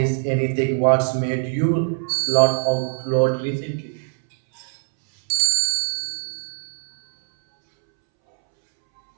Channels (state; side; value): silent; left; 65 dB below the other